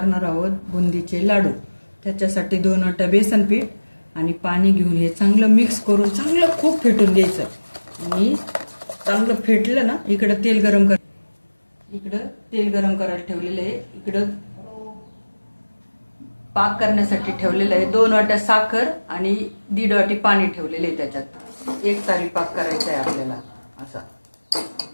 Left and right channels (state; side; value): inverted; both; correlation -1.00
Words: आहोत बुंदीचे लाडू। त्याच्यासाठी 2 वाट्या बेसन पीठ आणि पाणी घेऊन हे चांगलं मिक्स करून चांगलं खूप फेटून घ्यायचं। आणि चांगलं फेटलं ना, इकडे तेल गरम करायला ठेवलेलं आहे। इकडे पाक करण्यासाठी ठेवलेलं आहे। 2 वाट्या साखर आणि 1.5 वाटी पाणी ठेवलेले आहे। त्याच्यात एक तारी पाक करायचा आहे आपल्याला असा।